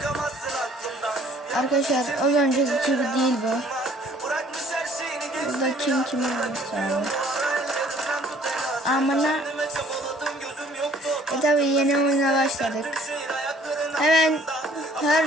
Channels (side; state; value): both; normal; correlation 0.57